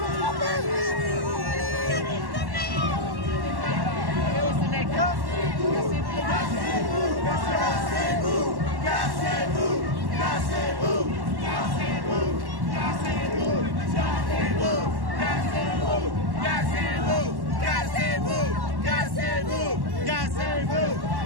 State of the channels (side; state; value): left; late; 1.1 ms